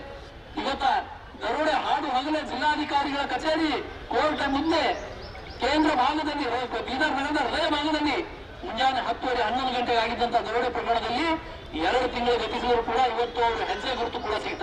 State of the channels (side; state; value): both; identical; correlation 1.00